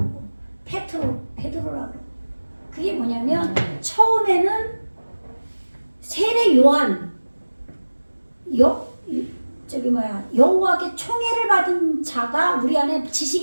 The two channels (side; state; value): both; inverted; correlation -1.00